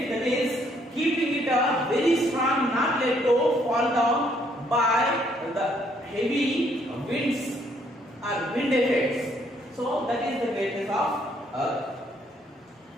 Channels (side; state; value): both; normal; correlation 0.68